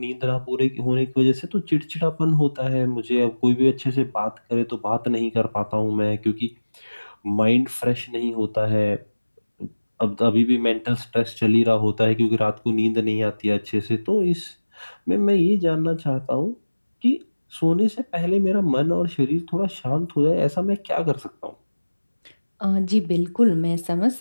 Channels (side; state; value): both; inverted; correlation -1.00